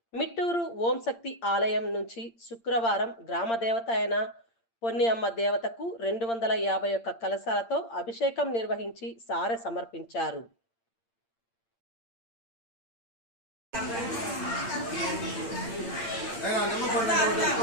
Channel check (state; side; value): late; right; 8.7 ms